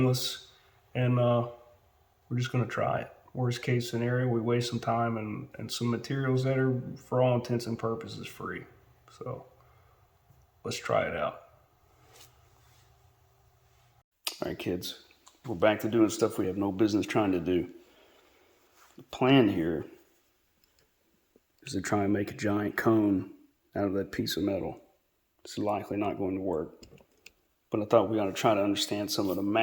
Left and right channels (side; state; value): both; identical; correlation 1.00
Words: and we're just going to try it. Worst case scenario, we waste some time and some materials that are, for all intents and purposes, free. So let's try it out. All right, kids, we're back to doing stuff we have no business trying to do. The plan here is to try and make a giant cone out of that piece of metal. This is likely not going to work, but I thought we ought to try to understand some of the